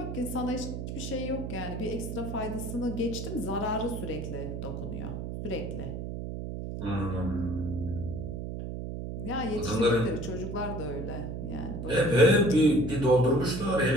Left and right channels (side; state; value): right; noise; hum, 5 dB below the sound